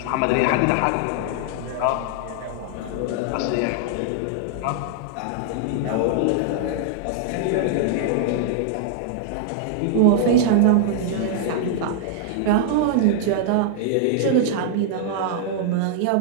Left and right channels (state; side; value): different; both; correlation -0.01